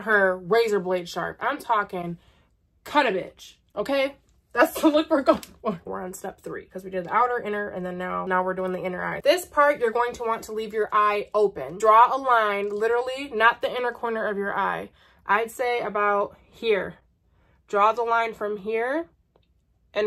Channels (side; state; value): both; identical; correlation 1.00